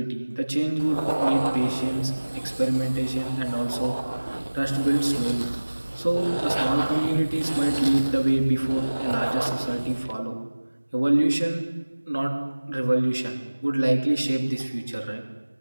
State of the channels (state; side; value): inverted; both; correlation -1.00